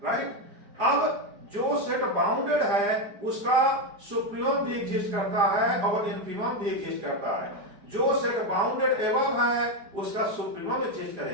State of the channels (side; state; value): left; late; 4.9 ms